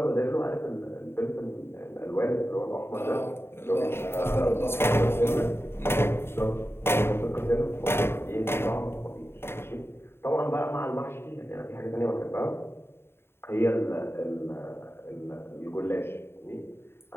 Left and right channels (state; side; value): late; right; 0.11 ms